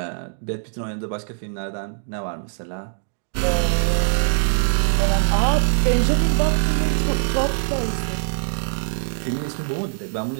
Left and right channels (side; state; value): left; silent; digital silence